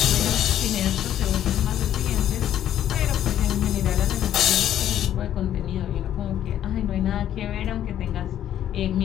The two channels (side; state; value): right; quieter; 11.0 dB